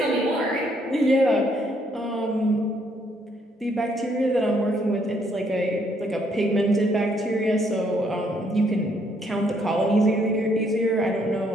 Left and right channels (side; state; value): both; normal; correlation 0.70